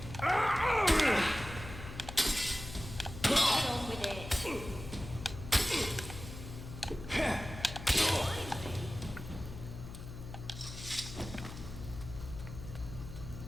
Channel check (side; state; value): left; noise; hum, 11 dB below the sound